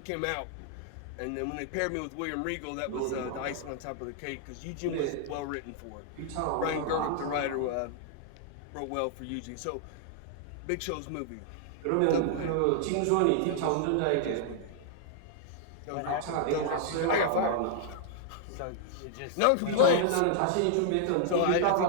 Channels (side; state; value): both; different; correlation -0.01